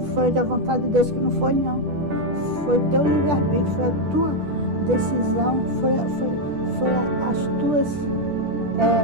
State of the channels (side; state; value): left; late; 10 ms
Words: foi da vontade de Deus, que não foi, não. Foi teu livre-arbítrio, foi a tua decisão, foi as tuas